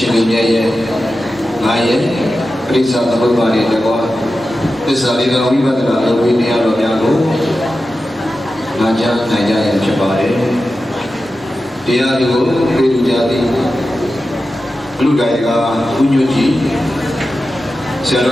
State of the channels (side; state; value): both; normal; correlation 0.92